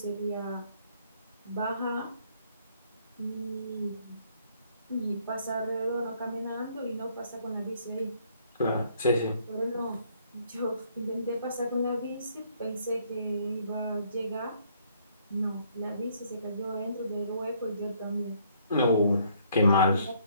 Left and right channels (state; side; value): inverted; both; correlation -0.66